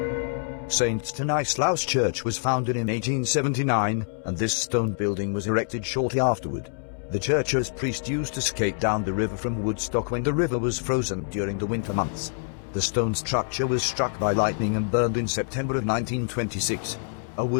St. Stanislaus Church was founded in 1879, and this stone building was erected shortly afterward. The church's priest used to skate down the river from Woodstock when the river was frozen during the winter months. The stone structure was struck by lightning and burned in September of 1926. A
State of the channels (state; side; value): silent; right; 61 dB below the other